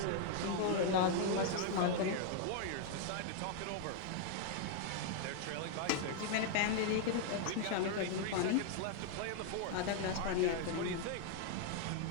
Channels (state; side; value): different; both; correlation 0.00